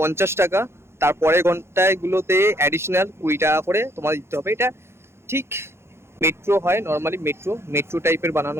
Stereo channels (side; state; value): left; late; 0.12 ms